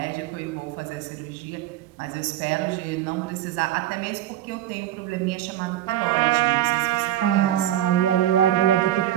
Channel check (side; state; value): left; quieter; 12.7 dB